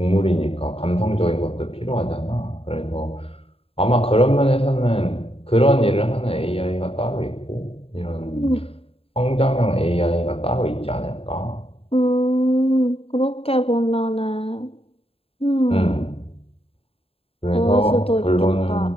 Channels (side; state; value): right; late; 0.28 ms